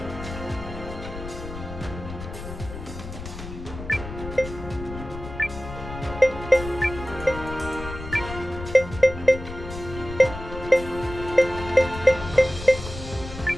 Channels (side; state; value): left; noise; rumble, 11 dB below the sound